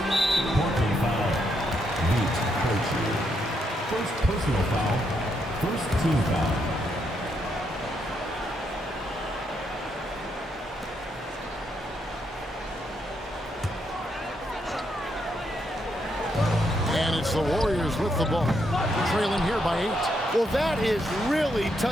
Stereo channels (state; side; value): normal; both; correlation 0.78